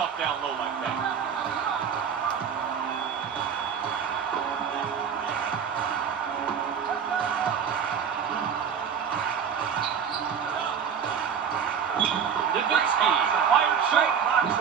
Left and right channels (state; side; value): quieter; left; 7.3 dB